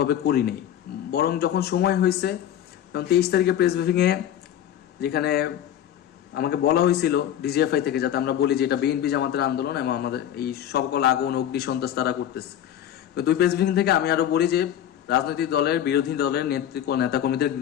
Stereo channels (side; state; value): right; quieter; 10.7 dB